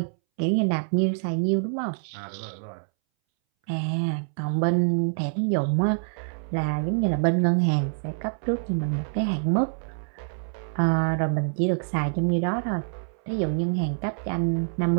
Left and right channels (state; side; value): silent; left; 61 dB below the other